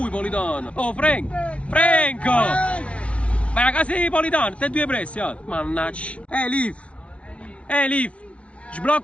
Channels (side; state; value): right; late; 0.062 ms